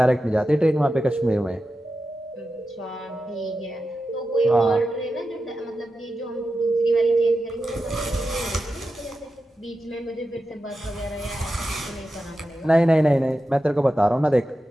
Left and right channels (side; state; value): both; normal; correlation 0.91